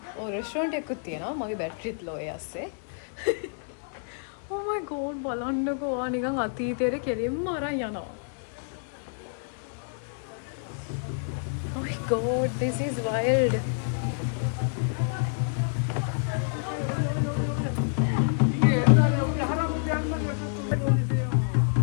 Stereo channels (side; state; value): right; silent; 59 dB below the other